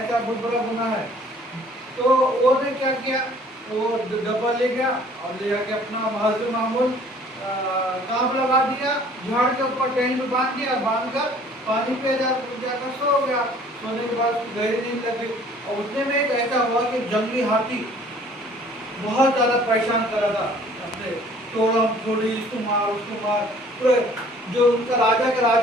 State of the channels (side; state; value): both; normal; correlation 0.54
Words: बहुत बड़ा गुनाह है। तो वो ने क्या किया, वो डब्बा ले गया और ले जाके अपना हजर मामूल कांप लगा दिया, झाड़ के ऊपर टहनी में बांध दिया, बांध कर पानी पे जाकर सो गया। सोने के बाद गहरी नींद लग गई। और उतने में एक ऐसा हुआ कि जंगली हाथी बहुत ज्यादा परेशान कर रहा था अपने, तोड़म थोड़ी, इसको मार उसको मार। पूरे जो उनका राजा का